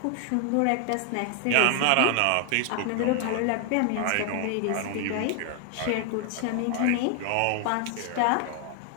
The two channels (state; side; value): different; both; correlation 0.00